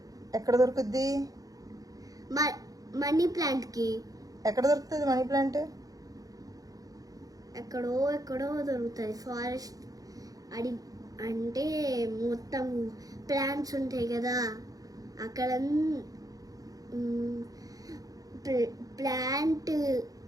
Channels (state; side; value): late; left; 0.17 ms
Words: ఎక్కడ దొరుకుద్ది మనీ ప్లాంట్ కి? ఎక్కడ దొరుకుతుంది మనీ ప్లాంట్? ఎక్కడో దొరుకుతుంది. ఫారెస్ట్ అంటే మొత్తం ప్లాంట్స్ ఉంటాయి కదా అక్కడ.